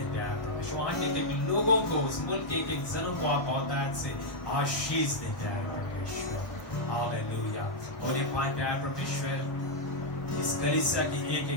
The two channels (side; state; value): right; late; 1.1 ms